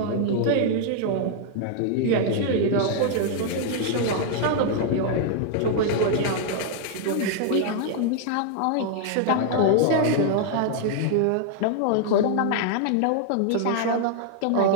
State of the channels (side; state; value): both; different; correlation -0.01